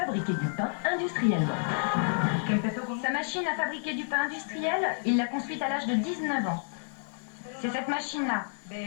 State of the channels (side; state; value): right; silent; 58 dB below the other